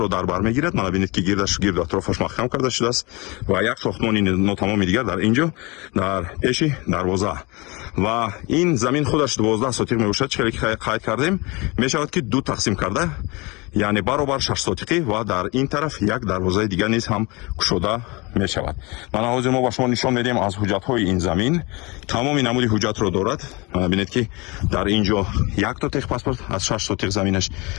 дар бар мегирад. мана бинед ки гирду атрофаш маҳкам карда шудааст ва як сохтмони нотамоми дигар дар инҷо дар пеши дарвоза ва ин замин худаш 12 сотиқ мебошад. чихеле ки қайд кардем мешавад ки ду тақсим карда, яъне баробар 6 сотиқӣ ва дар ин тараф як дарвозаи дигар низ ҳам кушода мешавад. мана ҳозир мо ба шумо нишон медиҳем аз ҳуҷҷатҳои ин замин. тамоми намуди ҳуҷҷатро дорад. мана бинед ки дар инҷо якто техпаспорт аз 6 сотиқ заминаш,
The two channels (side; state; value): right; quieter; 25.9 dB